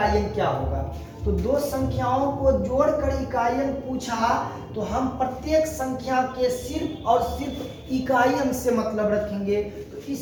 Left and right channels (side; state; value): both; identical; correlation 1.00